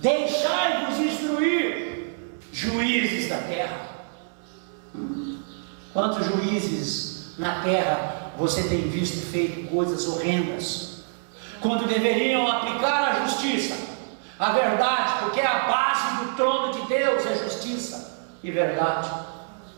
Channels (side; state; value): left; silent; 61 dB below the other